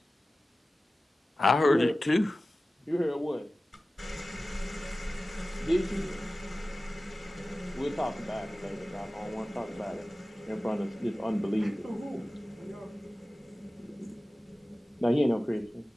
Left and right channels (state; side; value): normal; both; correlation 0.96